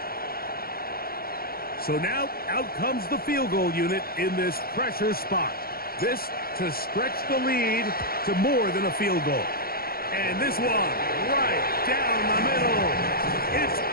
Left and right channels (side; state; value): right; late; 0.44 ms